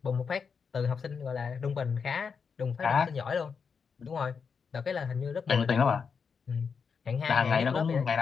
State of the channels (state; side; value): quieter; right; 5.9 dB